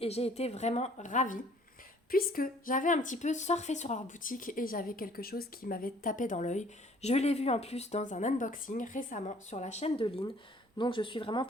j'ai été vraiment ravie puisque j'avais un petit peu surfé sur leur boutique et j'avais quelque chose qui m'avait tapé dans l'œil. Je l'ai vu en plus dans un unboxing récemment sur la chaîne de Lynn, donc je suis vraiment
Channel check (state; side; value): normal; both; correlation 0.57